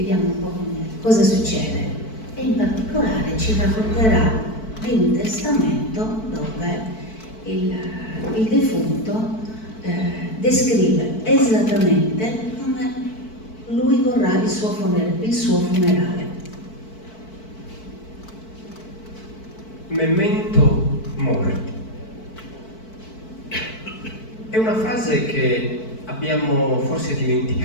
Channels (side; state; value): right; late; 4.5 ms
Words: un po' cosa succede e in particolare ci racconterà di un testamento dove il defunto descrive esattamente come lui vorrà il suo funerale. Memento mori. È una frase che abbiamo forse